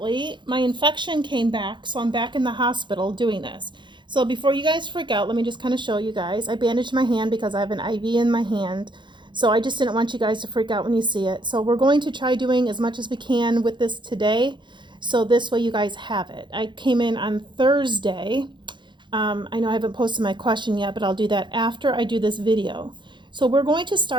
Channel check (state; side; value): late; left; 0.23 ms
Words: my infection came back, so I'm back in the hospital doing this. So before you guys freak out, let me just kind of show you guys. I bandaged my hand because I have an IV in my hand. So I just didn't want you guys to freak out when you see it. So we're going to try doing as much as we can with this today. So this way you guys have it. I came in on Thursday. I know I haven't posted my question yet, but I'll do that after I do this video. So we're going to